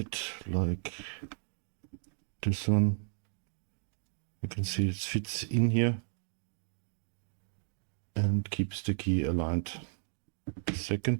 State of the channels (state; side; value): silent; left; digital silence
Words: like this one, you can see it fits in here and keeps the key aligned. The